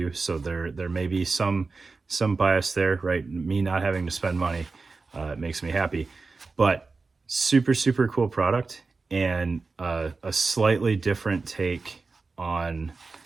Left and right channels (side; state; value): left; quieter; 4.1 dB